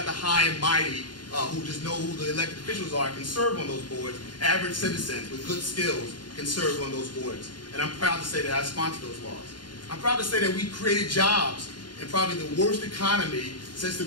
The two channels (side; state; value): right; late; 0.71 ms